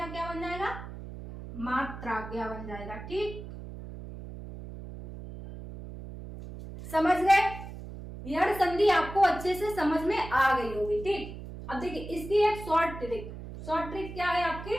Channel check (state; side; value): noise; right; hum, 11 dB below the sound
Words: क्या बन जाएगा, मात्राज्ञा बन जाएगा, ठीक, समझ गए। यह संधि आपको अच्छे से समझ में आ गई होगी, ठीक। अब देखिए इसकी एक शॉर्ट ट्रिक क्या है आपकी,